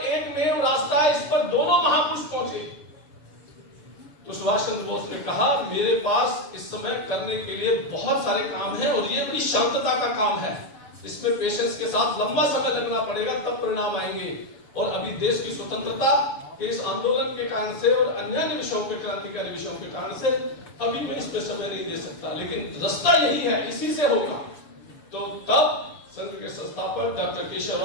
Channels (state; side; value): late; right; 7.0 ms